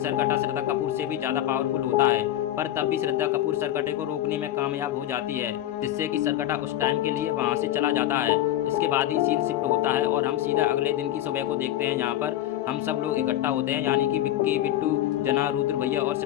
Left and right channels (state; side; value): quieter; right; 13.1 dB